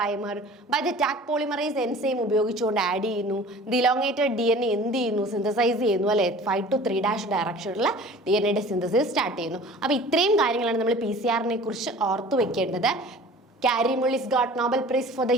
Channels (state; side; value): normal; both; correlation 0.44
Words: by the Taq polymerase enzyme ഉപയോഗിച്ചുകൊണ്ട് ആഡ് ചെയ്യുന്നു. ദി ഇലോങ്ങേറ്റഡ് DNA എന്ത് ചെയ്യുന്നു? സിന്തസൈസ് ചെയ്യുന്നു അല്ലേ. 5 to 3' ഡയറക്ഷനിൽ DNA സിന്തസിസ് സ്റ്റാർട്ട് ചെയ്യുന്നു. അപ്പോൾ ഇത്രയും കാര്യങ്ങളാണ് നമ്മൾ PCR കുറിച്ച് ഓർത്തു വെക്കേണ്ടത്. Kary Mullis got Nobel prize for the